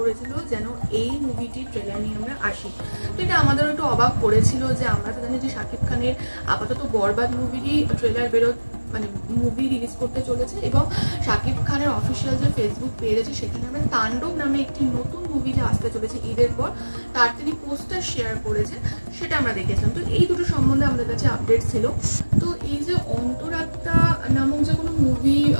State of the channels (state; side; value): inverted; both; correlation -1.00